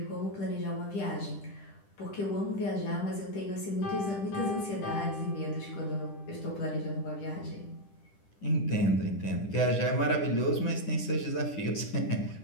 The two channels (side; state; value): right; late; 10 ms